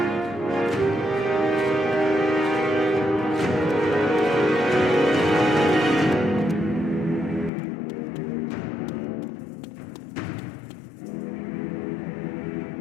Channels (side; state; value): right; drops out; at 7.5 s